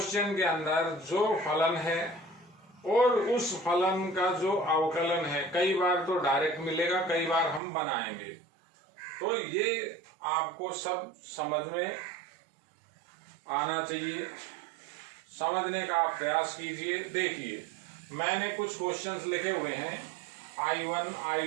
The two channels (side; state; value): left; drops out; at 7.6 s